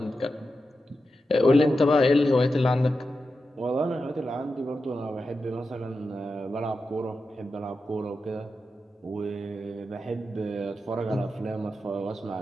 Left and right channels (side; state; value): both; normal; correlation 0.90